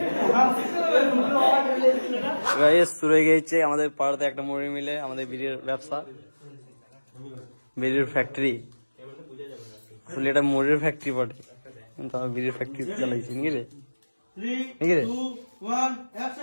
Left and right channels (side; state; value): both; inverted; correlation -1.00